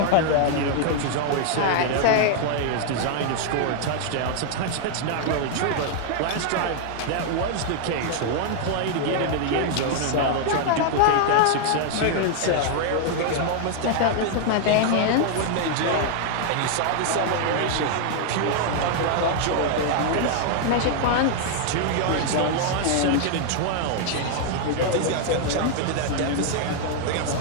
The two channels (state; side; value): different; both; correlation 0.00